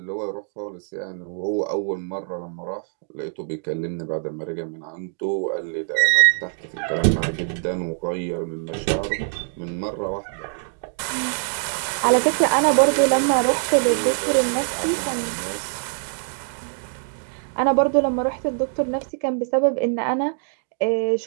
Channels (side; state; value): left; silent; digital silence